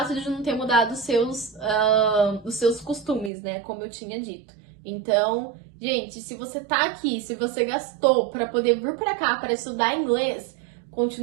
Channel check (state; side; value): drops out; left; at 3.3 s